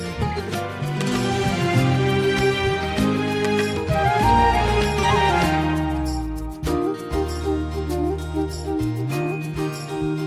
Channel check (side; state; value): both; identical; correlation 1.00